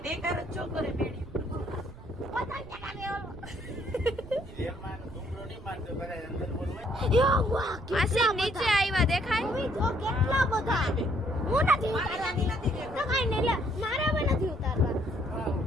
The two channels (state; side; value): noise; right; rumble, 17 dB below the sound